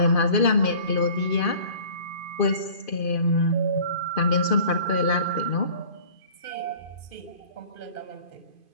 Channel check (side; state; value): right; late; 2.5 ms